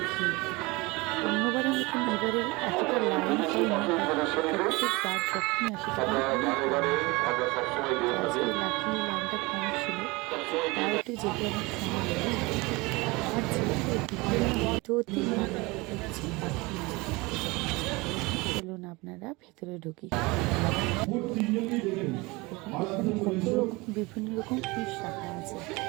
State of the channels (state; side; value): quieter; left; 24.2 dB